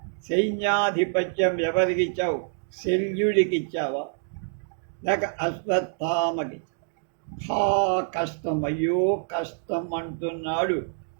సైన్యాధిపత్యం ఎవరికి ఇచ్చావు? శల్యుడికి ఇచ్చావా లేక అశ్వత్థామకి? హా కష్టం, అయ్యో కష్టం అంటున్నాడు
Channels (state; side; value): silent; left; digital silence